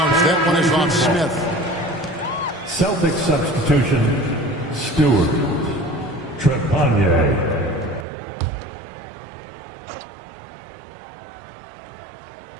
That one is off Smith. Celtics substitution, Stewart. Trepanier.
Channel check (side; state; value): left; drops out; at 8.1 s